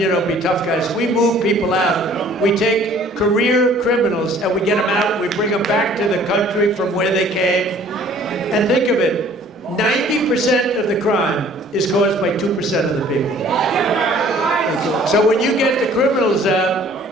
be tough guys. We move people out. We take career criminals and we get them out. We bring them back to the country from where they came. And think of it. 90% of the crime is caused by 2% of the people. So when you get the criminals out,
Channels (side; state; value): both; normal; correlation 0.54